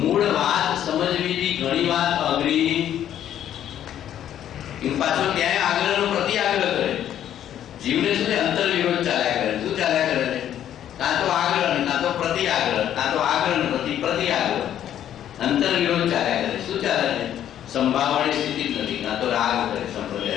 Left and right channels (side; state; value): right; quieter; 10.8 dB